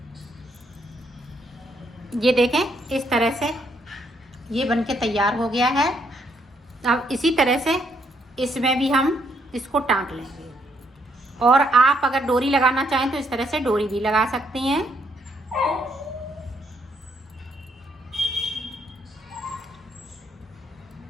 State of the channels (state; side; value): normal; both; correlation 0.73